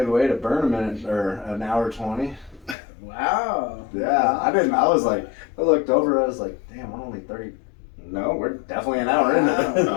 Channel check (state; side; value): drops out; right; at 2.8 s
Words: way to burn a minute or an hour 20. Wow. Yeah, I looked over, I was like, damn, we're only 30. No, we're definitely an hour in it.